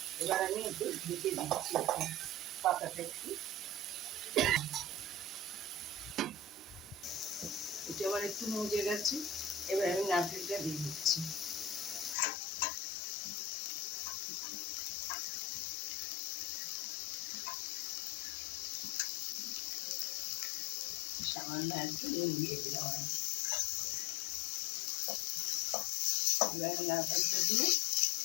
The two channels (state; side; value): drops out; right; at 12.2 s